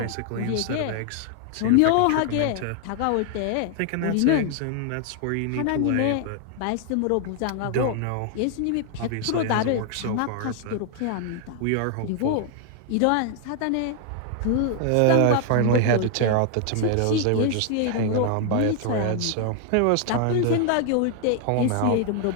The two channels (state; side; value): different; both; correlation 0.00